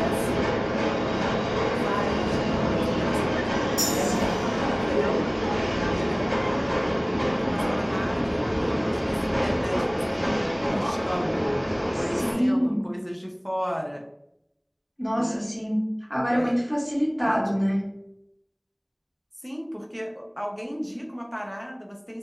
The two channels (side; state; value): both; identical; correlation 1.00